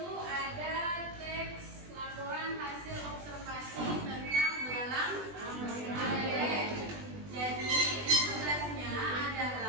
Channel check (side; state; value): left; late; 20 ms